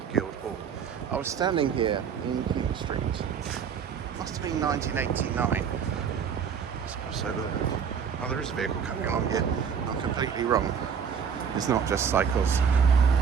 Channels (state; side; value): quieter; left; 7.1 dB